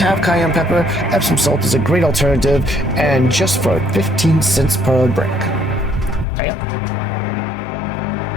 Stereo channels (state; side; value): drops out; right; at 6.2 s